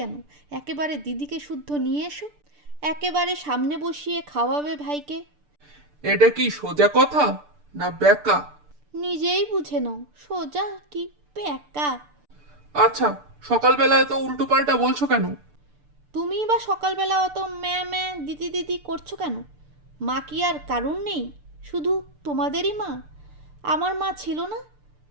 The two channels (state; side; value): late; left; 6.8 ms